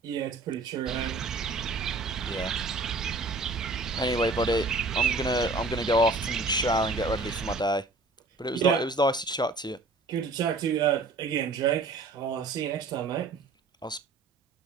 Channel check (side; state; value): left; quieter; 3.3 dB